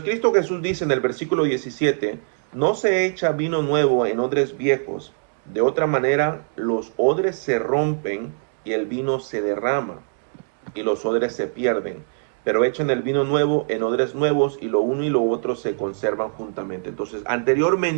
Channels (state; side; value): silent; left; digital silence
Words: Cristo Jesús dice en el versículo 17, no se echa vino nuevo en odres viejos, de otra manera los odres se rompen y el vino se derrama y los odres se pierden, pero echan el vino nuevo en odres nuevos y lo uno y lo otro se conservan juntamente. Entonces,